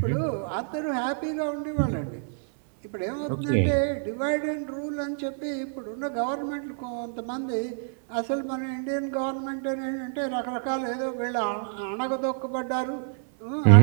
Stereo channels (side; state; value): left; silent; digital silence